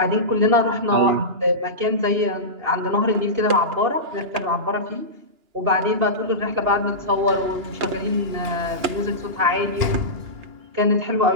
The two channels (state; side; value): late; left; 2.9 ms